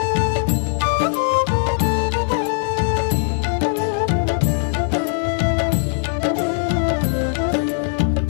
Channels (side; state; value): right; silent; digital silence